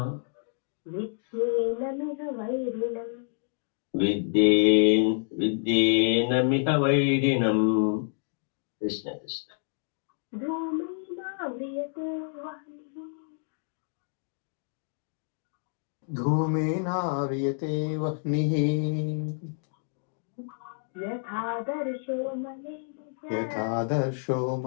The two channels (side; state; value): right; silent; digital silence